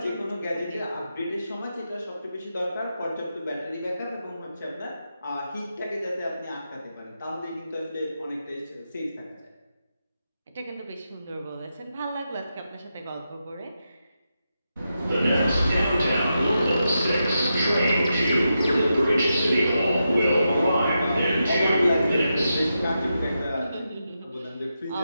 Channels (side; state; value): both; inverted; correlation -0.87